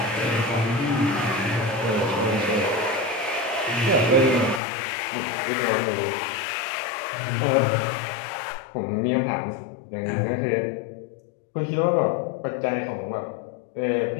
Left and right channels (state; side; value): drops out; right; at 4.6 s